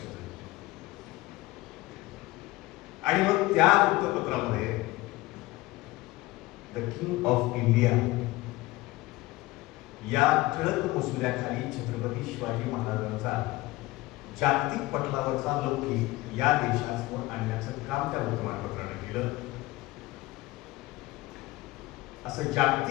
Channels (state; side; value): quieter; right; 19.6 dB